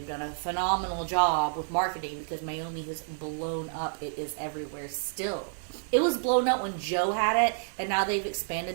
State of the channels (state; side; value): silent; left; digital silence